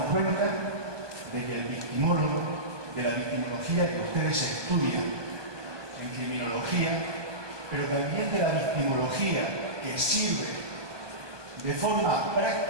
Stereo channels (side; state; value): left; late; 1.2 ms